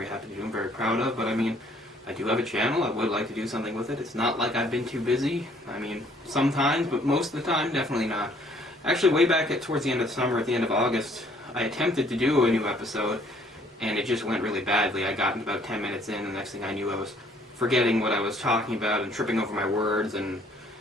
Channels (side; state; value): both; normal; correlation 0.62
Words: happy to do, I'm very proud of. But I mean, I do have a channel, I would like to do something with it. It's not like I've been too busy. I mean, sometimes, but most of the time, definitely not. Actually, way back towards the end of the summer, at the end of August, I attempted to do a new episode, and it just went really badly. I got about 10 minutes in, and the next thing I knew I was forgetting what I was talking about and tripping over my words and